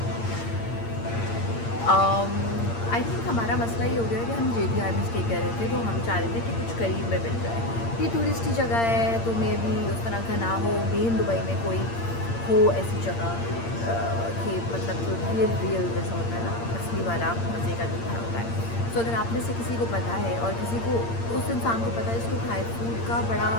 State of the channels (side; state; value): right; late; 8.7 ms